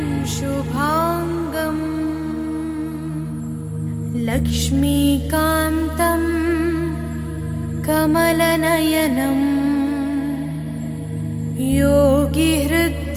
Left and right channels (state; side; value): identical; both; correlation 1.00